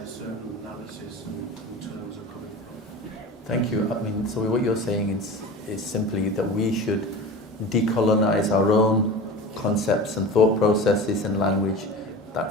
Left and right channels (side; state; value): both; normal; correlation 0.33